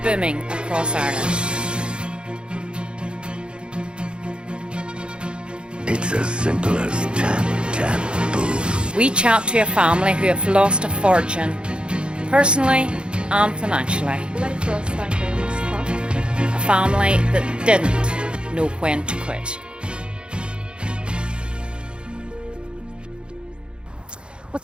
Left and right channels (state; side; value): late; left; 0.054 ms